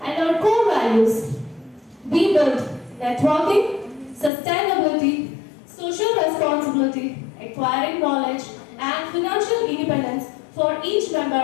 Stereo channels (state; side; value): drops out; right; at 4.3 s